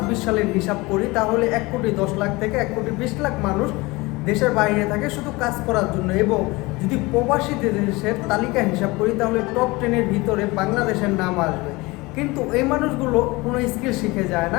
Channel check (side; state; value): right; quieter; 23.0 dB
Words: সালের হিসাব করি, তাহলে 1,10,00,000 থেকে 1,20,00,000 মানুষ দেশের বাইরে থাকে শুধু কাজ করার জন্য। এবং যদি প্রবাসী দেশের তালিকা হিসাব করি, তাহলে টপ 10-এর ভিতরে বাংলাদেশের নাম আসবে। কিন্তু এই মানুষগুলো কোনো স্কিল শিখে যায়